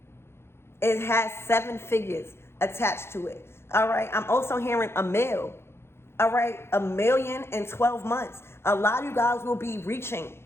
it has 7 figures attached to it. All right, I'm also hearing a mill. All right, $1 million in 12 months. A lot of you guys will be reaching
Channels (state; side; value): late; right; 0.12 ms